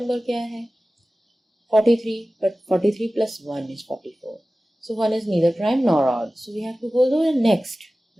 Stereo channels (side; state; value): both; normal; correlation 0.96